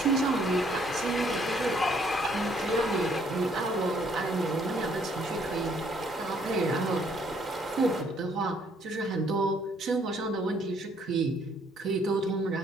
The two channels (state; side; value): normal; both; correlation 0.65